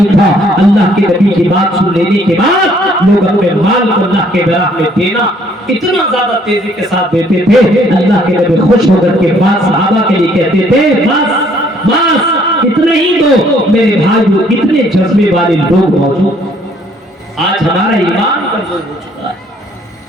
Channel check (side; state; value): both; normal; correlation 0.63